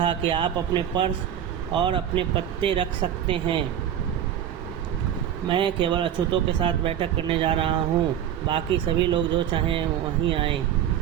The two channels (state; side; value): quieter; left; 10.0 dB